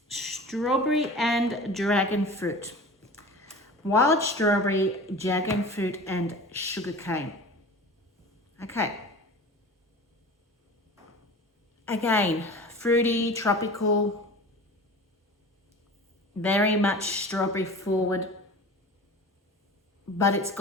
strawberry and dragon fruit. Wild strawberry, dragon fruit and sugarcane. Okay. Again, fruity, tropical, very much strawberry forward, but it's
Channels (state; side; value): normal; both; correlation 0.37